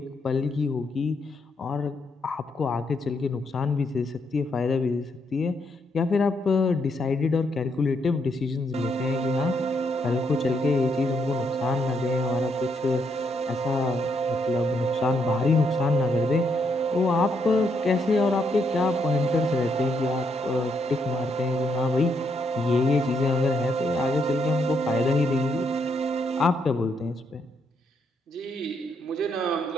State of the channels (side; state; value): both; normal; correlation 0.76